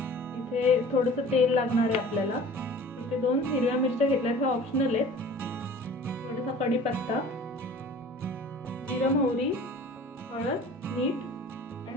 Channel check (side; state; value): both; normal; correlation 0.44